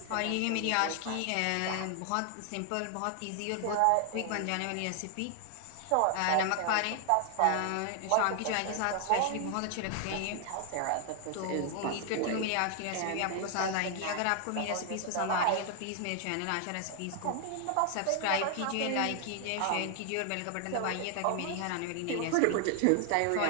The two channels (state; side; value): different; both; correlation 0.00